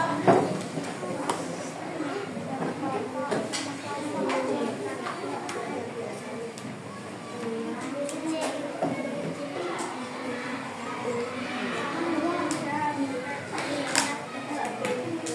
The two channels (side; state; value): both; identical; correlation 1.00